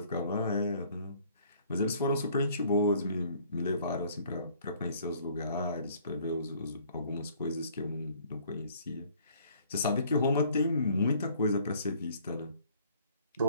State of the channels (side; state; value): both; inverted; correlation -0.58